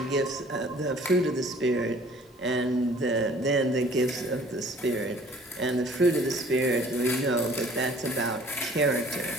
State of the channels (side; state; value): both; normal; correlation 0.53